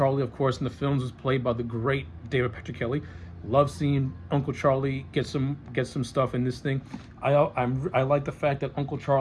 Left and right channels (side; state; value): both; identical; correlation 1.00